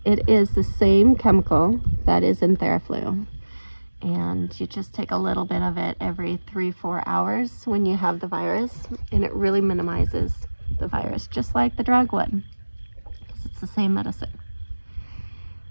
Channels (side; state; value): both; inverted; correlation -1.00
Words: It is the same chemical that is in Tamiflu, and you just take a little bit of it every 3-4 hours when you have the virus, and it really minimizes the virus, just like the drug would, because it's the same medicine.